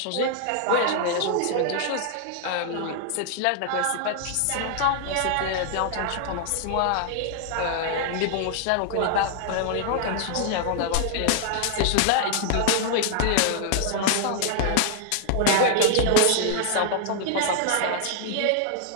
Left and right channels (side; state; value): both; different; correlation 0.00